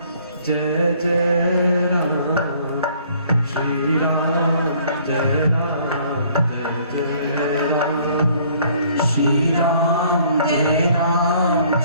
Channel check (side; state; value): both; inverted; correlation -0.59